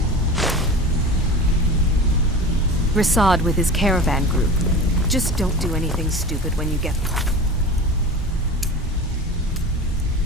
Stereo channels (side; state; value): both; normal; correlation 0.33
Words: Rasad with his caravan group. Just don't do anything stupid when you get there.